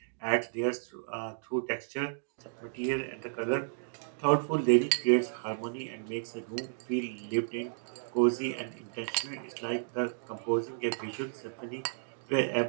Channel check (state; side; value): silent; left; digital silence